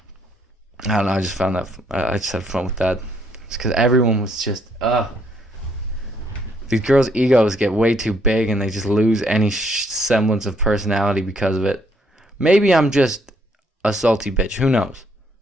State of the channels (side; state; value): both; normal; correlation 0.69